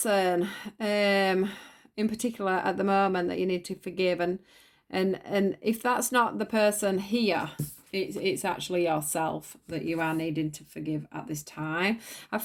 in particular at the moment that you need to forgive, and if that's not the person here, it's actually yourself that you are needing to forgive at this time. I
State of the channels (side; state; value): both; identical; correlation 1.00